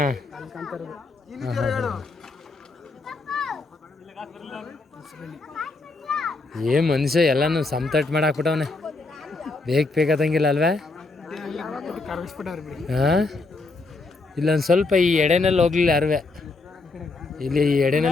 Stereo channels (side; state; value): right; quieter; 3.5 dB